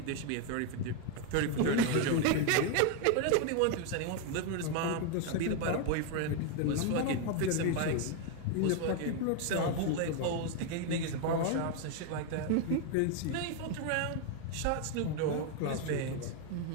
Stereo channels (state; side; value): different; both; correlation 0.01